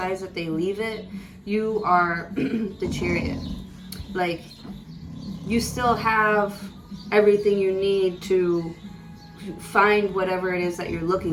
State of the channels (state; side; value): identical; both; correlation 1.00